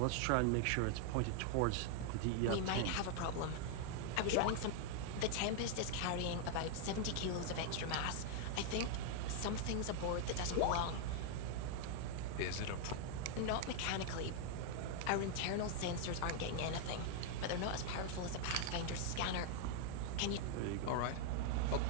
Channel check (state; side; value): different; both; correlation 0.00